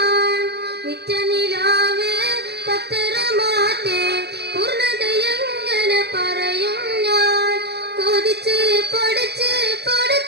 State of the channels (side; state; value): left; late; 0.48 ms